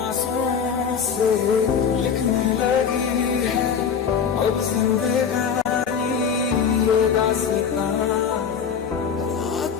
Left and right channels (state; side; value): quieter; right; 6.9 dB